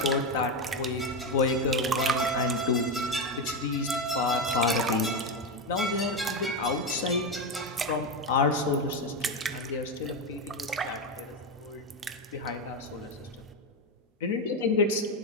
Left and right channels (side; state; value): both; normal; correlation 0.11